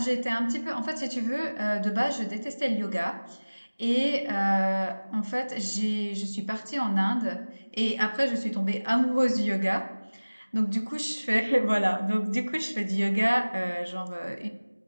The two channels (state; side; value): inverted; both; correlation -1.00